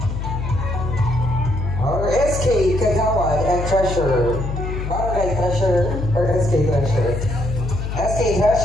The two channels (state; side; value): noise; left; hum, 4 dB below the sound